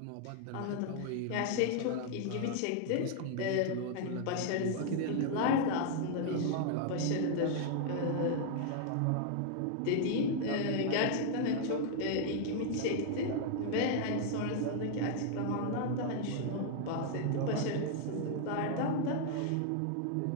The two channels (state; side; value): different; both; correlation 0.00